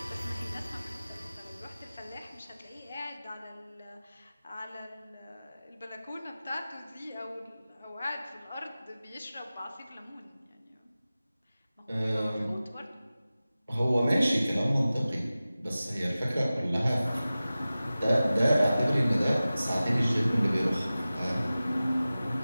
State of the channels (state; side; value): inverted; both; correlation -0.96